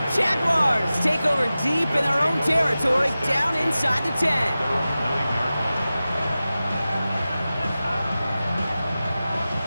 Jaguars take over deep in their own territory, down inside the 10.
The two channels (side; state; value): both; inverted; correlation -0.95